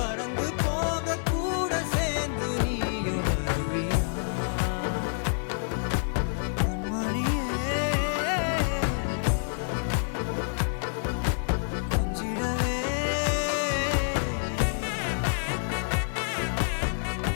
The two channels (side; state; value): right; silent; 59 dB below the other